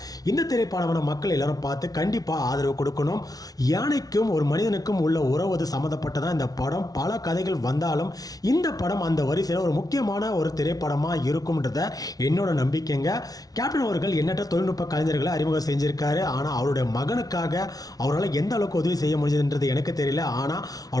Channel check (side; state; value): right; late; 0.18 ms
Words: இந்த திரைப்படமான மக்கள் எல்லாரும் பார்த்து கண்டிப்பாக ஆதரவு கொடுக்கணும். யானைக்கும் ஒரு மனிதனுக்கும் உள்ள உறவு சம்மந்தப்பட்டதான் இந்த படம். பல கதைகள் வந்தாலும் இந்த படம் அந்த வரிசையில் ஒரு முக்கியமான ஒரு திரைப்படமாக இருக்கும்ன்றத என்னோட நம்பிக்கைங்க. கேப்டன் அவர்கள் எண்ணற்ற தொழில்நுட்ப கலைஞர்களை அறிமுகம் செஞ்சிருக்காரு. ஆனால் அவருடைய மகனுக்காக அவரால் எந்த அளவுக்கு உதவி செய்ய முடிஞ்சதுன்றது எனக்கு தெரியல. ஆனால்